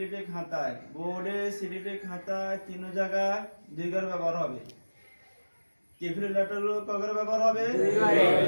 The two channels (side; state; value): both; inverted; correlation -1.00